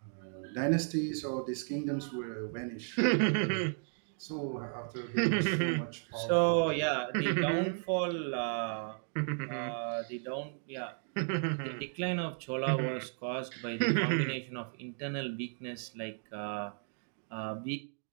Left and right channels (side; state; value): left; silent; 55 dB below the other